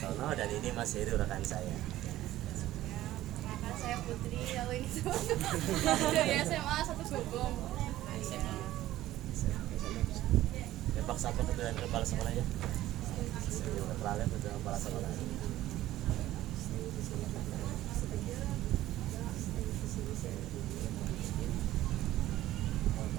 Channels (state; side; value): quieter; left; 14.7 dB